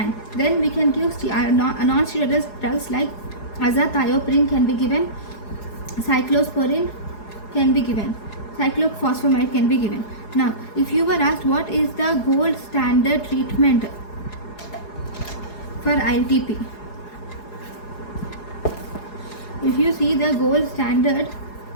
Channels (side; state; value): right; late; 4.8 ms